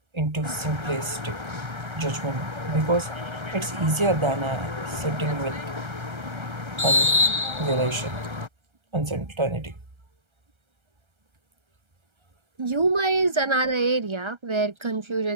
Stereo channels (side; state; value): left; late; 1.3 ms